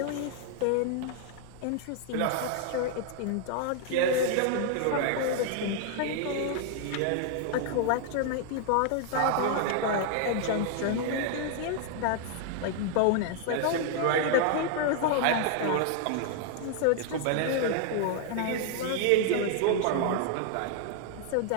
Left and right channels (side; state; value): both; different; correlation 0.00